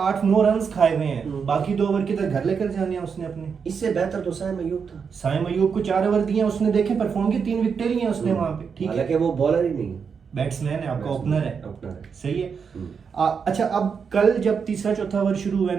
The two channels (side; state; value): left; quieter; 6.2 dB